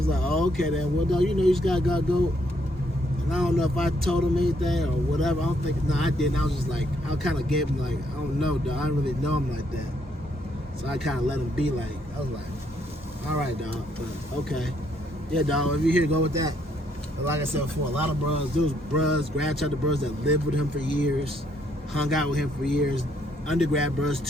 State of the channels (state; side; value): normal; both; correlation 0.71